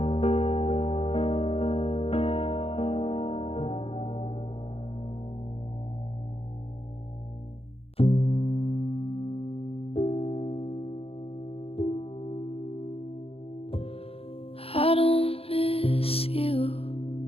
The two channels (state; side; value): late; right; 0.28 ms